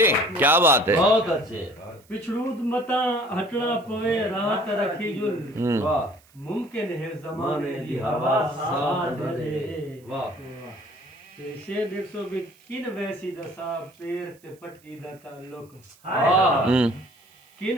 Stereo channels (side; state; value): right; noise; hiss, 30 dB below the sound